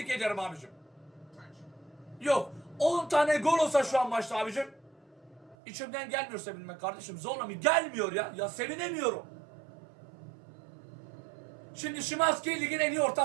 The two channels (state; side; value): drops out; left; at 5.6 s